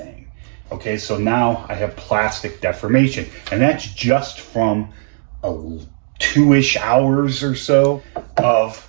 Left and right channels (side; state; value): left; silent; digital silence